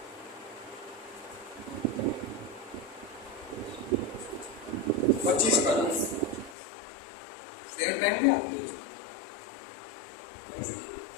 25 बार, सेम टाइम क्या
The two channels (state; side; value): drops out; right; at 6.6 s